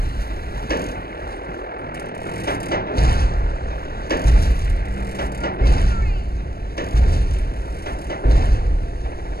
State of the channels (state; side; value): late; right; 0.44 ms